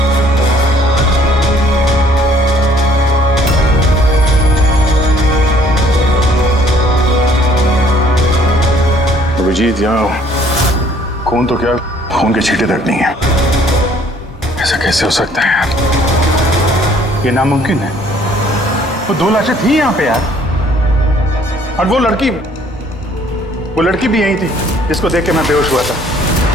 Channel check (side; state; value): both; normal; correlation 0.60